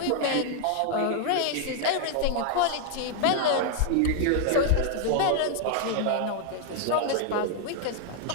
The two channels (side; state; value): both; different; correlation 0.00